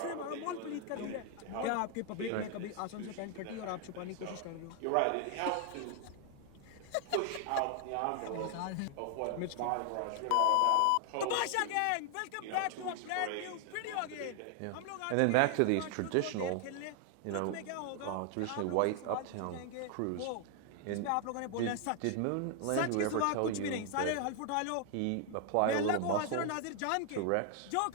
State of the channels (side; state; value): both; different; correlation 0.00